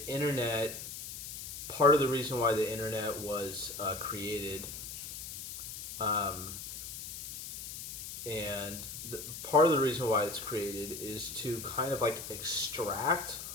internet. Part of the reason why the internet was created, um, and part of the reason why it's created is to kind of like extract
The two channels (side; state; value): left; noise; hiss, 9 dB below the sound